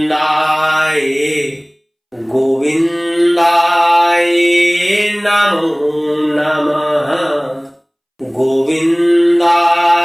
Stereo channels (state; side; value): identical; both; correlation 1.00